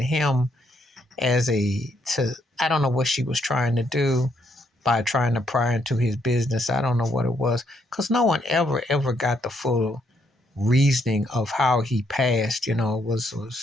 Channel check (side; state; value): both; normal; correlation 0.74